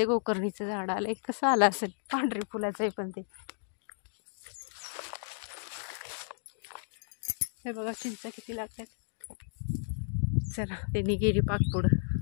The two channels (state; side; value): silent; right; digital silence